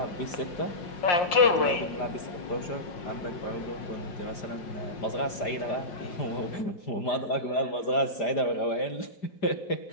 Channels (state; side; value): late; right; 5.6 ms